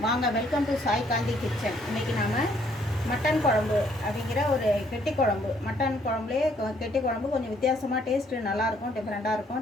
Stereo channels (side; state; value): both; normal; correlation 0.66